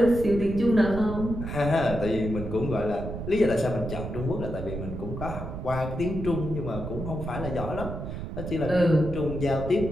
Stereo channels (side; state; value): right; noise; rumble, 7 dB below the sound